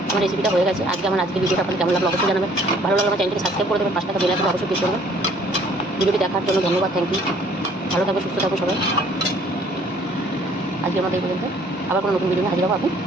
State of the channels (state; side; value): normal; both; correlation 0.58